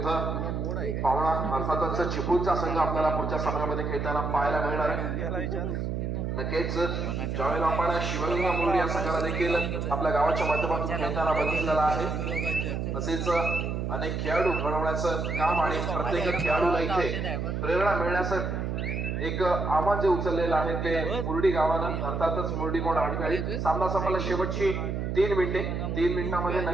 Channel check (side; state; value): right; noise; hum, 2 dB below the sound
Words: पावणा अर्थातच चिपळूणचा संघ आपल्याला पुढच्या सामन्यामध्ये खेळताना पाहायला मिळणार आहे. नक्कीच ज्यावेळेला आपण शिवगंगा मुरडी या संघाला देखील आपल्या गावाच्या माध्यमातून खेळताना बघितलेला आहे. तसेच अनेक खेळाडू घडवण्याचं काम आणि प्रत्येक खेळाडूला इथे प्रेरणा मिळण्याचं एक आव्हान जे उचललेलं आहे ते मुरडी गावानं, अर्थातच मुरडी कोंड आडव्याळी. सामना संपला शेवटची 3 मिनिटे. 3 मिनिटांमध्ये